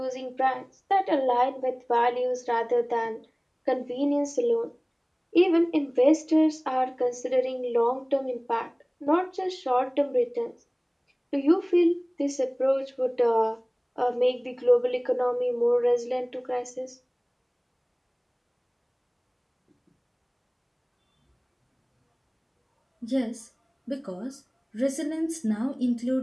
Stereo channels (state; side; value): identical; both; correlation 1.00